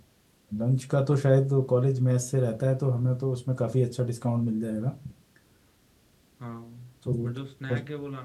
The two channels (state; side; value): identical; both; correlation 1.00